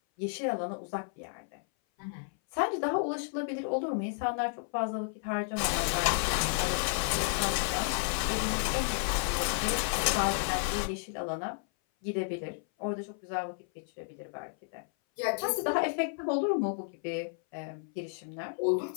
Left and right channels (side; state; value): right; silent; 56 dB below the other